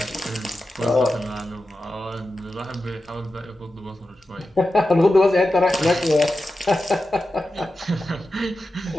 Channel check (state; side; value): normal; both; correlation 0.92